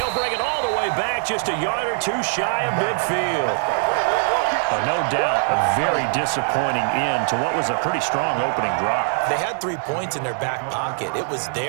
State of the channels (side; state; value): left; silent; digital silence